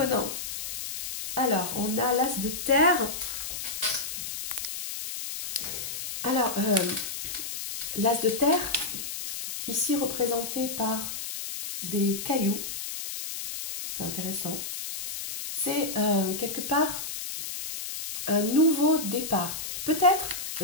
Alors, on a l'as de terre. Alors, l'as de terre, ici représenté par des cailloux. C'est intéressant. C'est quelque part un nouveau départ. Peut-être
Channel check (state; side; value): noise; left; hiss, 6 dB below the sound